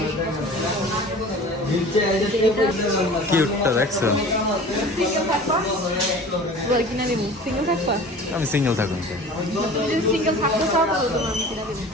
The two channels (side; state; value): both; normal; correlation 0.41